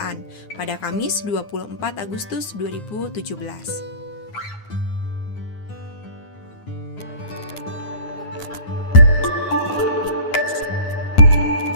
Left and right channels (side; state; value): right; late; 9.6 ms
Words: pada Kamis 24 Agustus 2017.